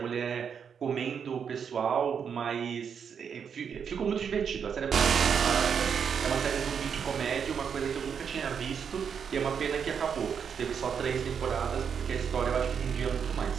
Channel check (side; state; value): left; quieter; 7.1 dB